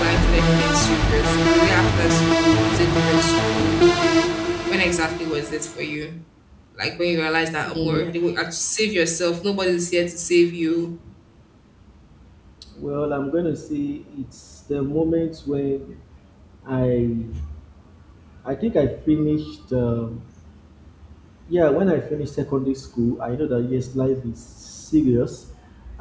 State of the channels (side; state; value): both; identical; correlation 1.00